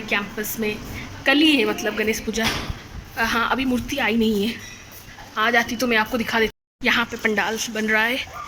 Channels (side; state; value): both; identical; correlation 1.00